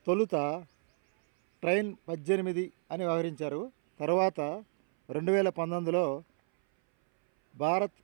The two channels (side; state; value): left; silent; 57 dB below the other